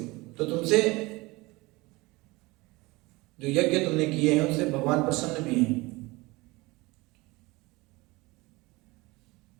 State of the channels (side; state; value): left; quieter; 22.7 dB